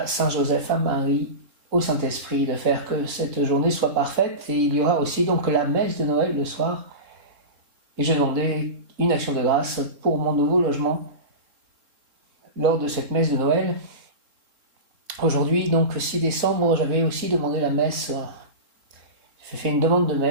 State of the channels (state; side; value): late; left; 3.7 ms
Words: Saint Joseph, à Marie, au Saint-Esprit, de faire que cette journée soit parfaite. Et il y aura aussi donc la messe de Noël le soir. Et je demandais une action de grâce pour mon nouveau logement lors de cette messe de Noël. Aujourd'hui, donc 6 décembre, j'avais aussi demandé la messe. J'ai fait une demande de